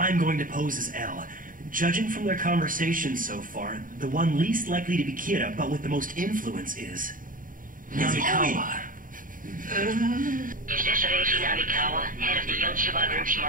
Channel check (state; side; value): late; left; 0.40 ms